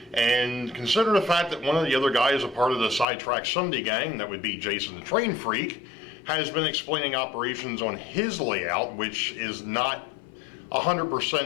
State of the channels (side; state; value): right; drops out; at 3.1 s